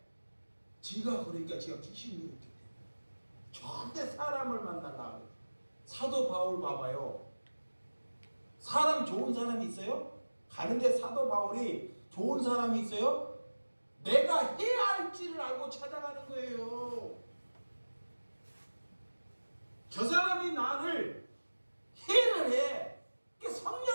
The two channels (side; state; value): both; inverted; correlation -1.00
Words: 지가 그러니까 지가 귀신이 이렇게 돼요. 절대 사람을 만나려고 해요. 사도 바울 봐봐요. 사람 좋은 사람이 있어요? 가는데 사도 바울이 좋은 사람이 있어요? 내가 해야 할지를 알고 찾아가는 거예요. 저 사람이 나를 해를 해.